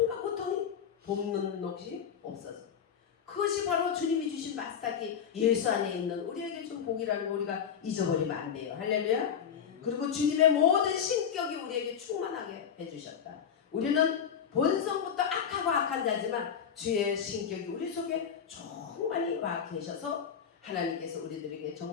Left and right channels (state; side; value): quieter; right; 7.7 dB